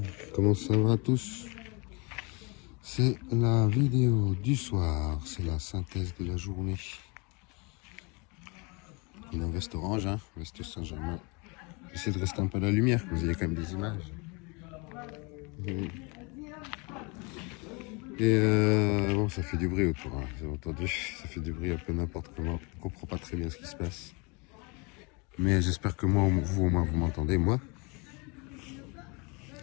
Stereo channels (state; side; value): quieter; right; 29.9 dB